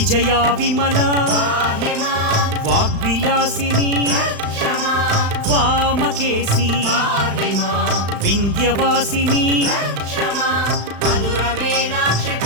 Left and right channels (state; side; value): late; left; 35 ms